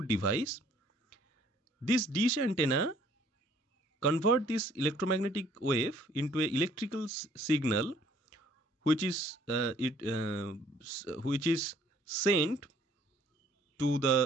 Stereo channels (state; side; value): normal; both; correlation 0.60